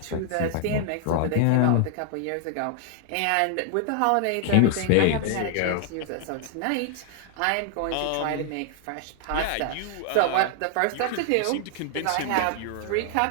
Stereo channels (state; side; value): different; both; correlation -0.01